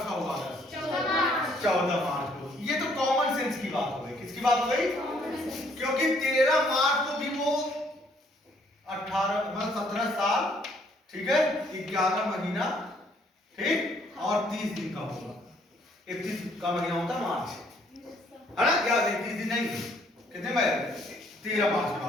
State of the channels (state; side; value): normal; both; correlation 0.65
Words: का होगा? 14 मार्च को। ये तो कॉमन सेंस की बात हो गई। किसकी बात हो गई? क्योंकि 13 मार्च को भी वो 17 साल, ठीक है, 11 महीना, ठीक, और 30 दिन का होगा। 31 का महीना होता है मार्च, है ना? क्या 31 दिन नहीं, कितने में? 13 मार्च का,